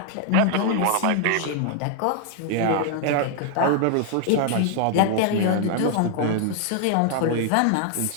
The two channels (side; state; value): both; different; correlation 0.00